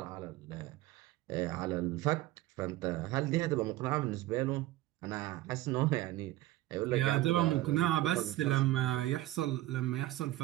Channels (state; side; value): quieter; left; 16.4 dB